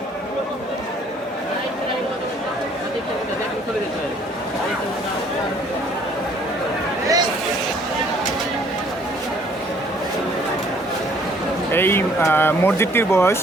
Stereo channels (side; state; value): both; normal; correlation 0.60